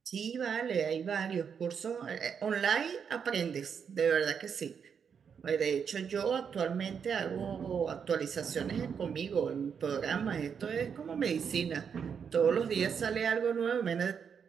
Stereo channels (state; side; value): quieter; left; 6.9 dB